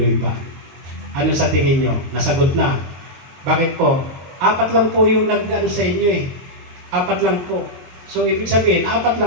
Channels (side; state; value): left; late; 22 ms